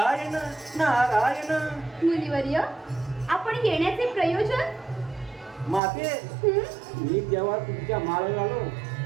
नारायण. मुनिवर्य आपण येण्याचे प्रयोजन? माते मी जेव्हा तुमच्या माळाला आलो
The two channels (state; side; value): drops out; left; at 5.8 s